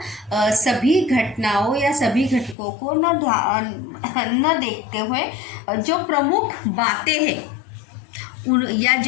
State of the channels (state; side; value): drops out; right; at 2.6 s